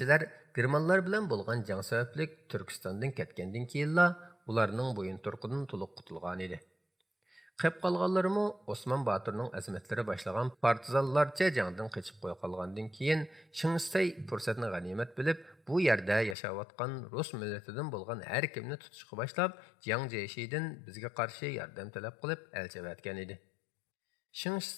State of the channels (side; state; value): right; drops out; at 16.4 s